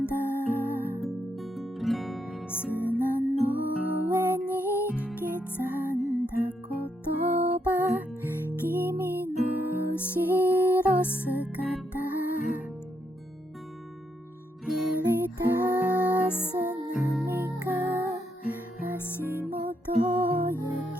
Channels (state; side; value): normal; both; correlation 0.78